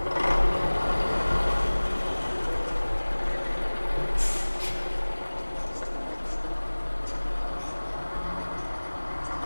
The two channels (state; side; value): inverted; both; correlation -1.00